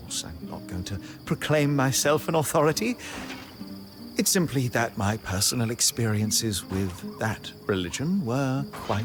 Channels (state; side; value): identical; both; correlation 1.00